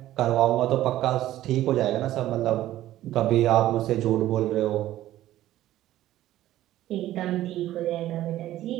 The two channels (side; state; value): left; quieter; 14.0 dB